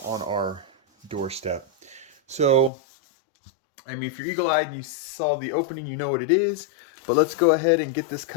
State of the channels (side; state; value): right; drops out; at 2.7 s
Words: on our doorstep. So, I mean, if you're eagle-eyed and you saw the opening, you know what it is. But let's go ahead and get this